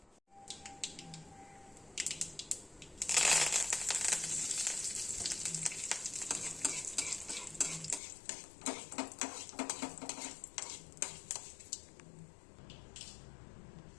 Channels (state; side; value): drops out; right; at 8.0 s